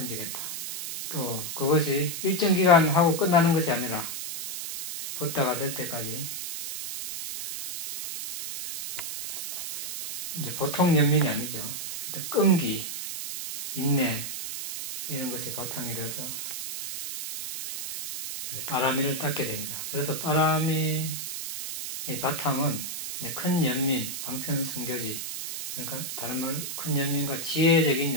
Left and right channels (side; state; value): right; noise; hiss, 5 dB below the sound